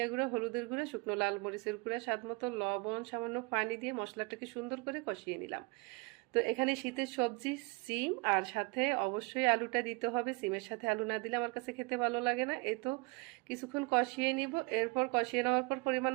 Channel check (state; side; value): quieter; left; 27.7 dB